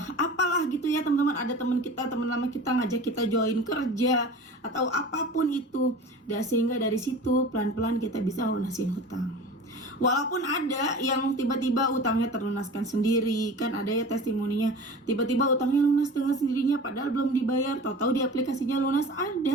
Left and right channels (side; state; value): both; normal; correlation 0.37